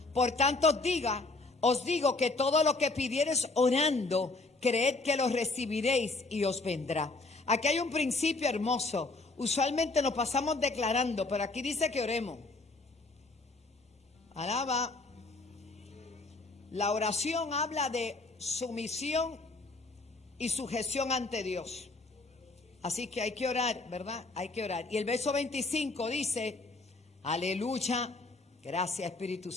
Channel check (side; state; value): right; quieter; 3.4 dB